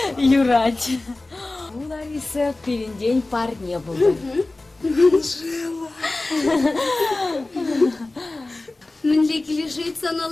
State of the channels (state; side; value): quieter; right; 3.0 dB